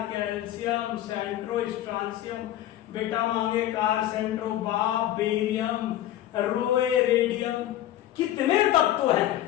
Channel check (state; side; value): quieter; right; 13.0 dB